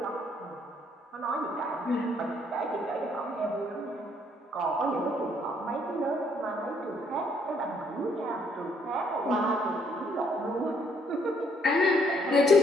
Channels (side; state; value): both; normal; correlation 0.67